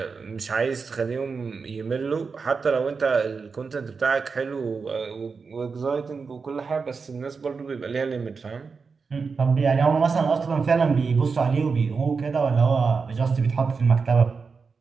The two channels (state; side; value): quieter; left; 5.0 dB